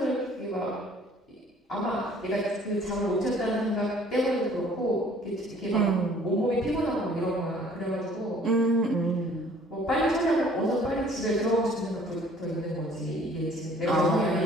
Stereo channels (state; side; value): normal; both; correlation 0.55